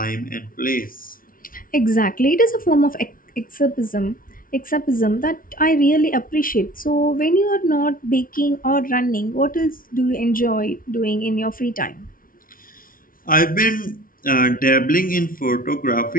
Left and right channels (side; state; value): right; late; 0.41 ms